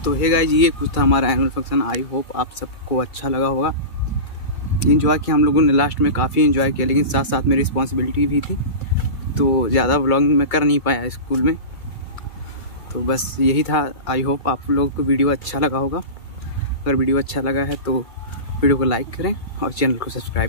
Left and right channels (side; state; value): right; late; 2.3 ms